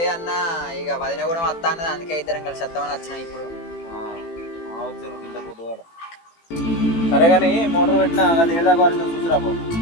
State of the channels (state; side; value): late; right; 18 ms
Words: అన్న ఇక వదిన కూడా వస్తా అన్నది అందుకే ఇద్దరం కలిసి వస్తామని వచ్చినా ఇప్పుడు. సరే కానీ మోటార్ పెట్టినా అది ఏదాకా వారికి చూసిరా పో.